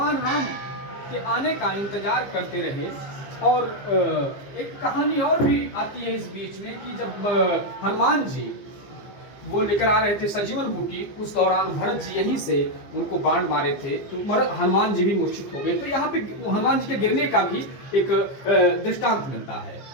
राम के आने का इंतजार करते रहे। और एक कहानी और भी आती है इस बीच में कि जब हनुमान जी वो लेकर आ रहे थे सजीवन बूटी, उस दौरान भरत जी यहीं से उनको बाण मारे थे तो हनुमान जी भी मूर्छित हो गए। तो यहाँ पे हनुमान जी के गिरने का भी एक दृष्टांत मिलता है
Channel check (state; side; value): late; right; 15 ms